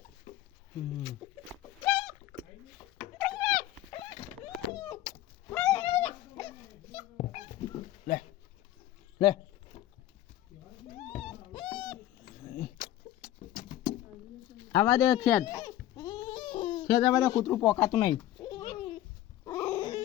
લે લે આવા દે ખેડ ખેડ આવા દે કૂતરું પોકાતું નહીં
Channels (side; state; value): right; quieter; 13.7 dB